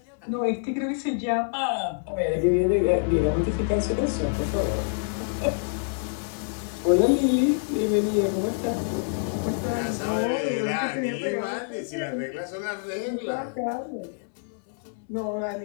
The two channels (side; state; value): right; silent; 61 dB below the other